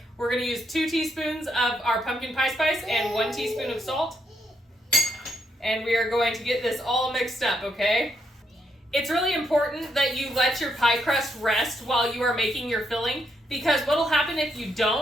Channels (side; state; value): both; normal; correlation 0.78